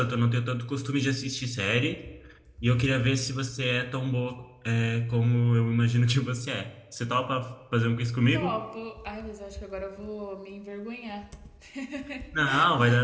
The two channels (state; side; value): identical; both; correlation 1.00